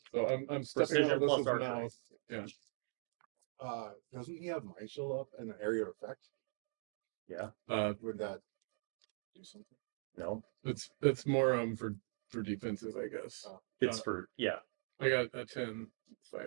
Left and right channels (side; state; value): left; silent; 50 dB below the other